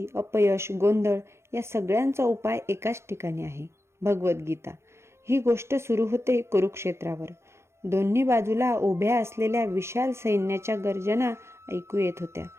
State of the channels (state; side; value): late; left; 0.13 ms